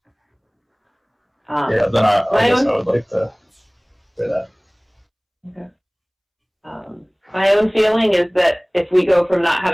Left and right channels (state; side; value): identical; both; correlation 1.00